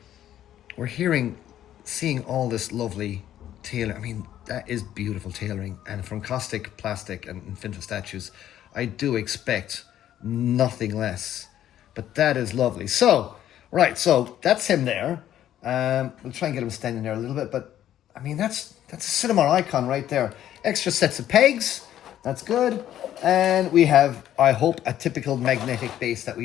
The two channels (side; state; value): right; quieter; 11.6 dB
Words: we're seeing all this lovely tailor. I mean, that is beautiful tailoring, and from Kaustic Plastik and Infinite Statues, I do expect nothing less. But that is lovely. So, right, so that's him there. We'll try and get him standing there a little bit, but I mean, that's a cinema icon right there. Extra sets of pegs, that's good. And we have, I hope, a typical magnetic base that we